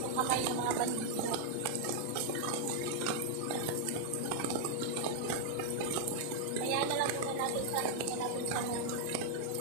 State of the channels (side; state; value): both; different; correlation -0.01